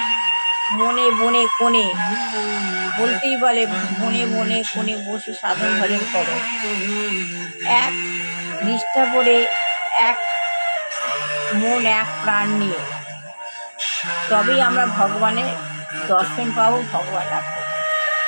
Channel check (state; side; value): inverted; both; correlation -1.00